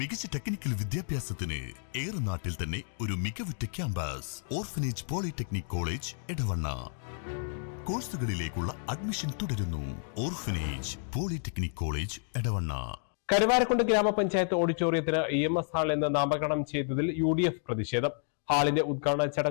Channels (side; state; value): right; silent; digital silence